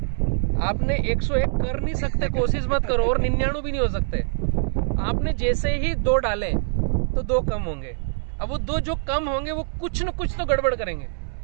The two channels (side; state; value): left; silent; digital silence